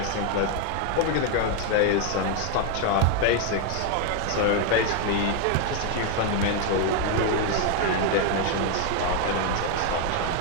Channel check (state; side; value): different; both; correlation 0.01